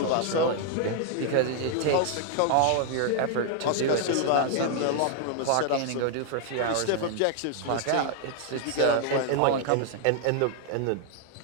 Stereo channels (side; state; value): both; different; correlation 0.00